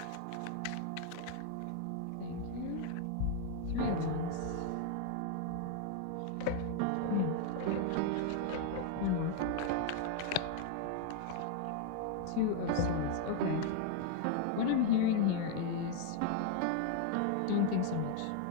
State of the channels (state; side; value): different; both; correlation 0.00